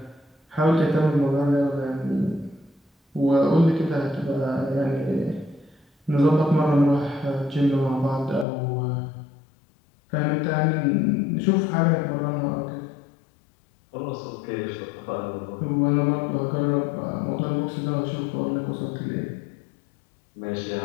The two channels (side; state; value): right; drops out; at 8.5 s